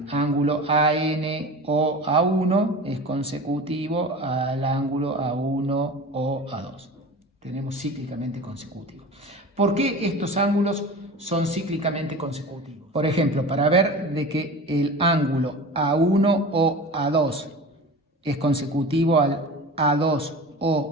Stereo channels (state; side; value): normal; both; correlation 0.34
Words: ángulo AN o A1 es consecutivo al ángulo A1 o A2. Tenemos cíclicamente consecutivos. ¿Por qué estos ángulos son cíclicamente consecutivos? Por ejemplo, para ver de que el ángulo A1 o A2 es consecutivo al A2